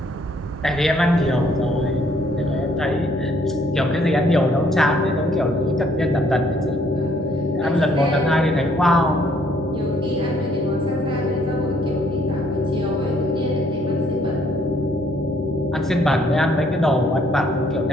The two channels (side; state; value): both; normal; correlation 0.65